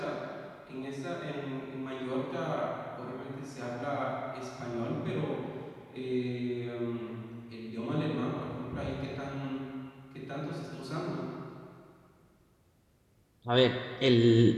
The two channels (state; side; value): identical; both; correlation 1.00